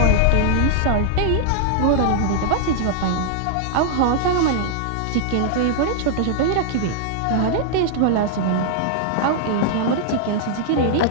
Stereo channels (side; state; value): both; different; correlation -0.01